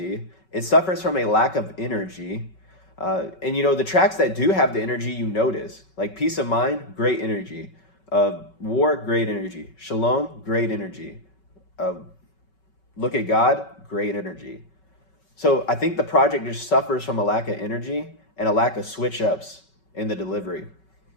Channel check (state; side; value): late; right; 5.3 ms